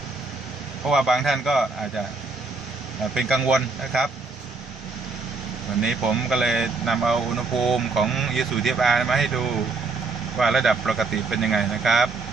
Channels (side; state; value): left; quieter; 3.9 dB